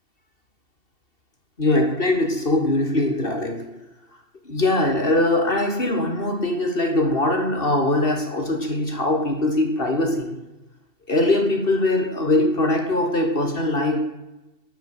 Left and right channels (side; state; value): right; late; 2.7 ms